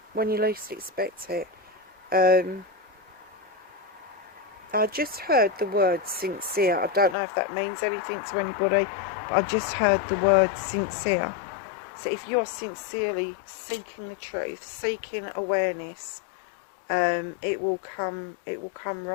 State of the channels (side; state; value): right; drops out; at 7.2 s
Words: When you least expect it. I just heard the word sincere. I don't know if that means anything to anybody, but I just heard the word sincere. So if you're sincerely seeking the truth, seeking awareness, it will come